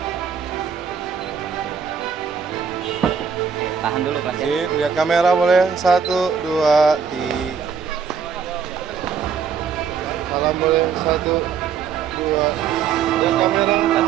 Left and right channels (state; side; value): quieter; left; 6.6 dB